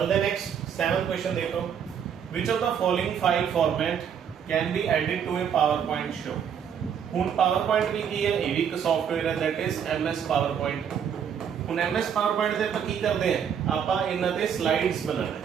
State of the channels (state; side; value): quieter; left; 8.0 dB